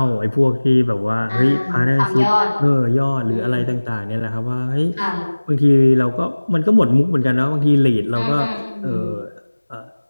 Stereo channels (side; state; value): both; inverted; correlation -1.00